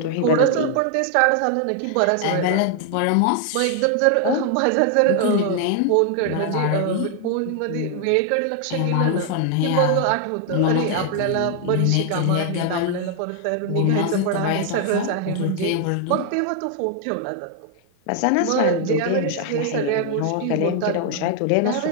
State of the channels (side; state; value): both; different; correlation 0.00